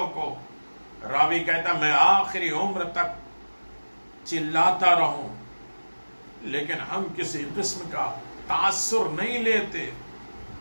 کو. راوی کہتا میں آخری عمر تک چلاتا رہوں لیکن ہم کسی قسم کا تاثر نہیں لیتے.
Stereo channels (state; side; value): inverted; both; correlation -1.00